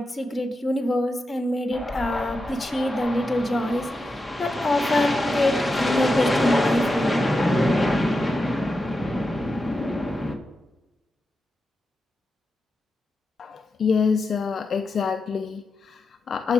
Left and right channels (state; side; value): normal; both; correlation 0.89